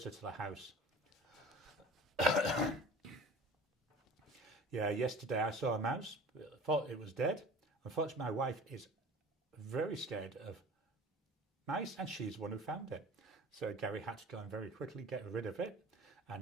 to the house. Yeah, yesterday I saw a mouse, thought it was dead. Unfortunately, my wife is very scared of mice, and she's the one who found it. So Garry had to go and very quickly get rid of it.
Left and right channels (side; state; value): both; normal; correlation 0.41